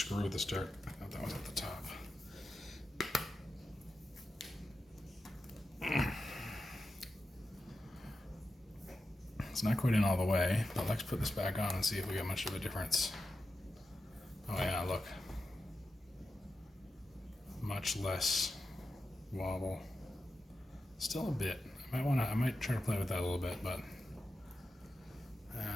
at the start, I thought that was at the top. It's not quite in all the way, but let's put this back on and see if we get much of a difference. Oh yeah, look. Much less wobble. Still a bit. I might try to play with that a little bit, but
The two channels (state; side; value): normal; both; correlation 0.90